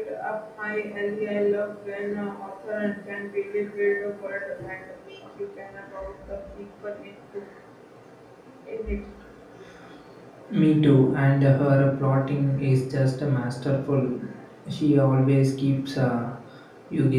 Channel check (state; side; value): identical; both; correlation 1.00